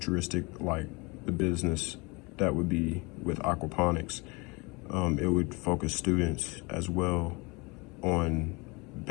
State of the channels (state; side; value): quieter; right; 27.2 dB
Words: like the business that would be with aquaponics. It would focus students as well on